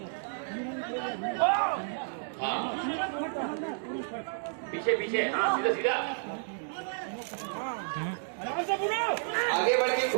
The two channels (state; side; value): silent; left; digital silence